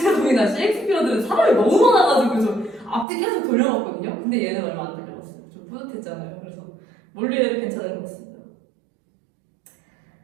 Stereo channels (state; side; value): drops out; left; at 3.1 s